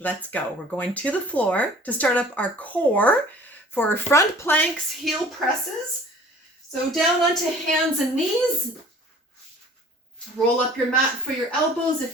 let's go. We're going to the floor to start up our core for front planks, heel presses. So down onto hands and knees. Roll up your mat for your elbows if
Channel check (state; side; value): normal; both; correlation 0.49